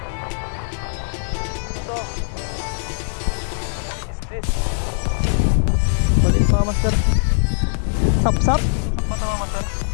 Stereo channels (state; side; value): silent; right; digital silence